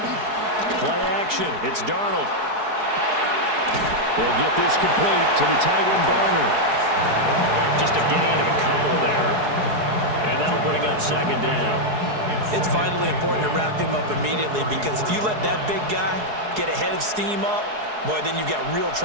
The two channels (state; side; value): late; left; 4.7 ms